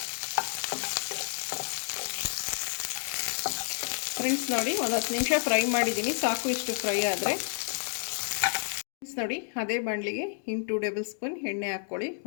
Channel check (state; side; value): silent; right; digital silence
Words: ಫ್ರೆಂಡ್ಸ್ ನೋಡಿ, ಒಂದು 10 ನಿಮಿಷ ಫ್ರೈ ಮಾಡಿದ್ದೀನಿ. ಸಾಕು, ಇಷ್ಟು ಫ್ರೈ ಆದರೆ. ಫ್ರೆಂಡ್ಸ್ ನೋಡಿ, ಅದೇ ಬಾಣಲಿಗೆ 2 ಟೇಬಲ್ ಸ್ಪೂನ್ ಎಣ್ಣೆ ಹಾಕ್ಕೊಳ್ಳಿ.